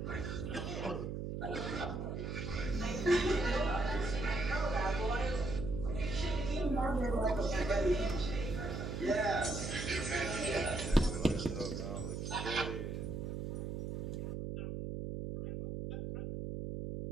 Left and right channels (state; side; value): noise; right; hum, 4 dB below the sound